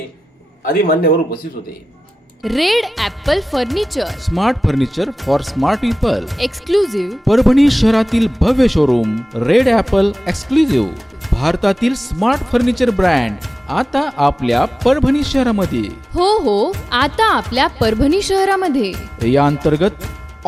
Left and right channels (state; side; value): normal; both; correlation 0.96